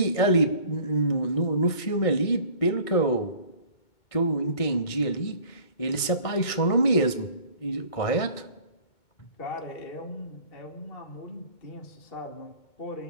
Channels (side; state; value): right; late; 2.2 ms